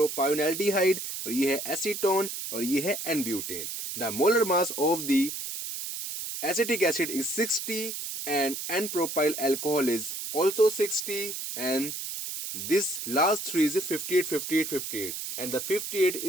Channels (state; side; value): noise; right; hiss, 6 dB below the sound